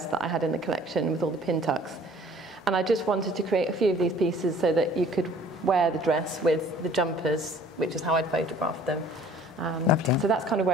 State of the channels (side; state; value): both; normal; correlation 0.53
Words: that I had in the collection with all the pin tucks. And I just wanted to create a few of these pieces so that you could wear the dress with the jumpers, which is how I'd photographed them. So that's kind of